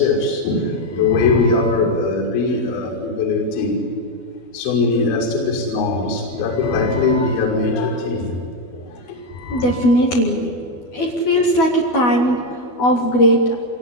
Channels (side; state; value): right; late; 12 ms